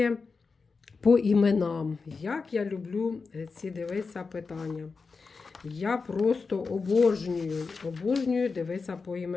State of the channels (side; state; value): right; quieter; 4.6 dB